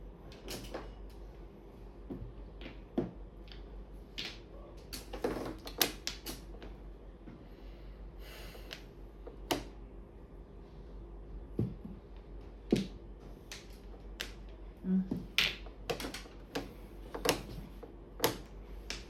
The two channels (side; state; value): both; identical; correlation 1.00